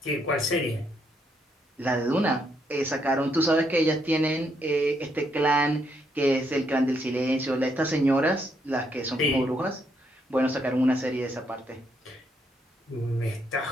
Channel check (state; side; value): normal; both; correlation 0.75